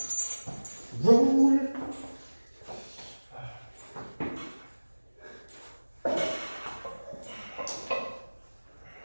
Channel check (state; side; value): inverted; both; correlation -1.00